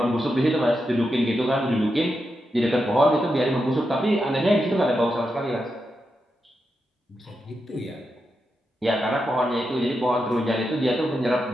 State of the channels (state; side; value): normal; both; correlation 0.86